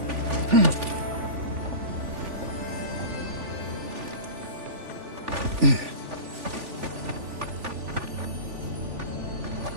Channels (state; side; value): late; left; 3.4 ms